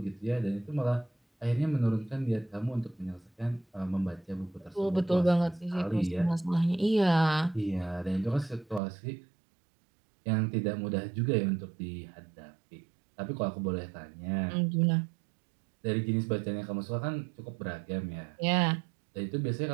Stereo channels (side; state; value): left; drops out; at 8.8 s